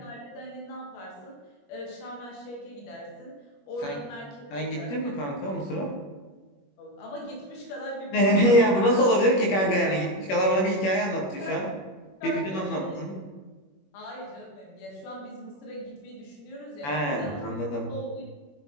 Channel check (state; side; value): late; right; 21 ms